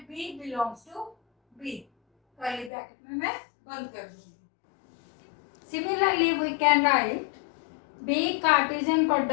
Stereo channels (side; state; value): right; drops out; at 2.7 s